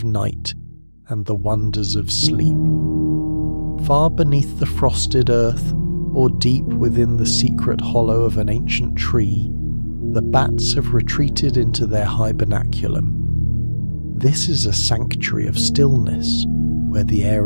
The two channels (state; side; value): inverted; both; correlation -1.00